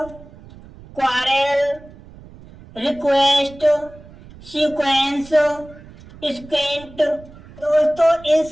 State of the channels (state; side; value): noise; right; rumble, 20 dB below the sound